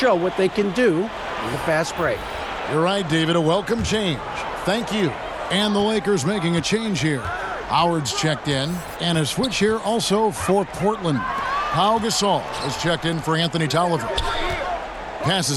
what they can do in the fast break. You're right, David. A welcome change. Thank you. And the Lakers making a change here. Howard's checked in, and a switch here also for Portland. Pau Gasol is checked in for Anthony Tolliver.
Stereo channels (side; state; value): both; identical; correlation 1.00